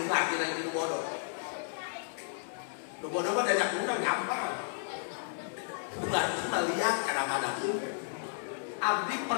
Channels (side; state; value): right; silent; 56 dB below the other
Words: luar dengan itu bodoh. Lu bodoh mah diajak udah nyampar. Bukan cuma lihat kadang-kadang abdi